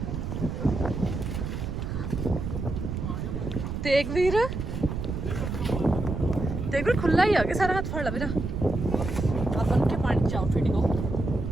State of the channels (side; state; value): right; noise; rumble, 4 dB below the sound